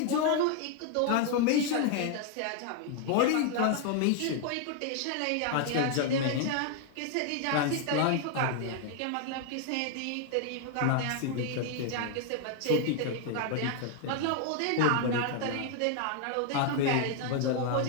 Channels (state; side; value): different; both; correlation 0.00